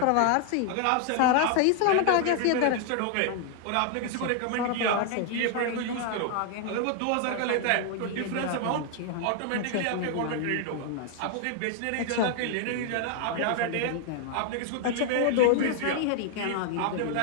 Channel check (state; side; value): different; both; correlation 0.00